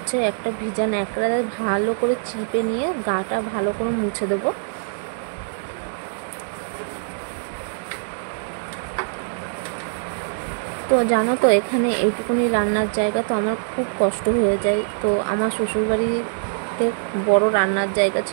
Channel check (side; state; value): left; silent; digital silence